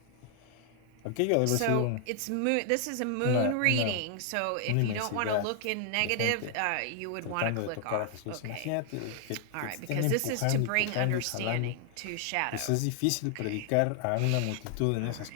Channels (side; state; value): both; different; correlation 0.00